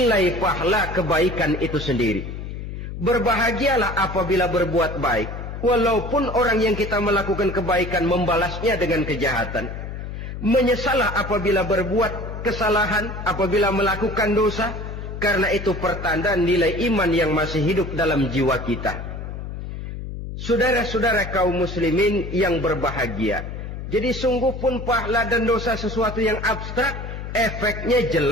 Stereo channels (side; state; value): left; noise; hum, 8 dB below the sound